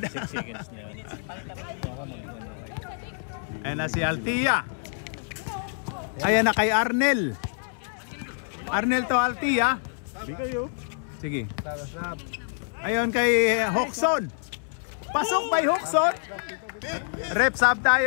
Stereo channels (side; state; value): right; silent; 60 dB below the other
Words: 6 seconds niya. Ayan na si Altia. Ayan na kay Arnel. Arnel to Altia. Sige. Sarap. Ayun kay Hoxon. Pasok by Hoxon. Rep sub